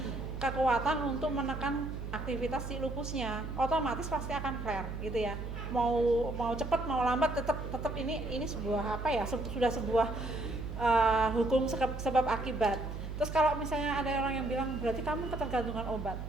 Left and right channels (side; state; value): right; noise; hum, 7 dB below the sound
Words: kekuatan untuk menekan aktivitas si lupusnya. Otomatis pasti akan flare gitu ya. Mau cepat mau lambat tetap ini sebuah apa ya? Sudah sebuah hukum sebab akibat. Terus kalau misalnya ada orang yang bilang berarti kamu ketergantungan obat,